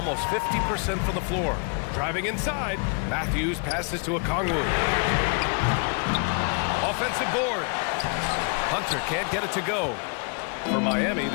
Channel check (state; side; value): quieter; right; 38.3 dB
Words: 50% from the floor. Driving inside, Matthews passes to Okongwu. Offensive board. Hunter can't get it to go. For Miami,